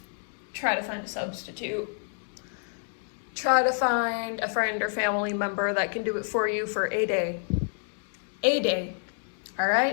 Try to find a substitute. Try to find a friend or family member that can do it for you for a day. All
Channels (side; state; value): right; silent; digital silence